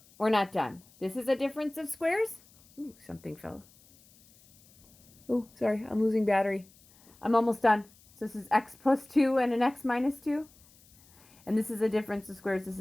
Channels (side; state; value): left; noise; hiss, 28 dB below the sound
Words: we're not done. This is a difference of squares. Ooh, something fell. Oh, sorry, I'm losing battery. I'm almost done. So this is x plus 2 and an x minus 2. And this is a difference of squares. This